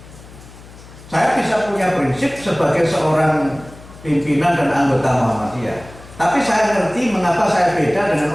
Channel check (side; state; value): left; noise; hum, 20 dB below the sound